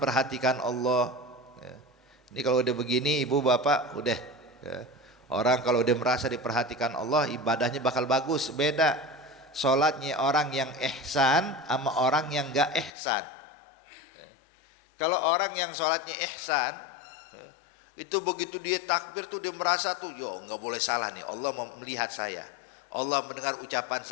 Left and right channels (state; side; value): drops out; right; at 12.9 s